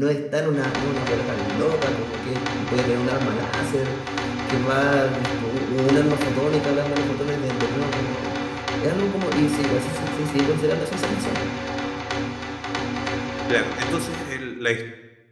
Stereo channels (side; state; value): both; identical; correlation 1.00